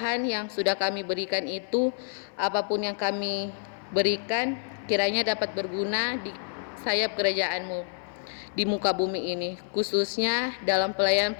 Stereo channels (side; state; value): right; silent; 56 dB below the other